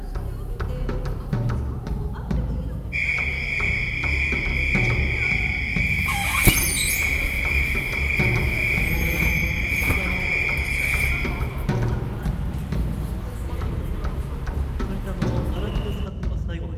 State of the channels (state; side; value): identical; both; correlation 1.00